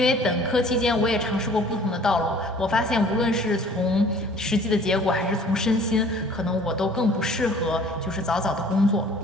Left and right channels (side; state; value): both; normal; correlation 0.51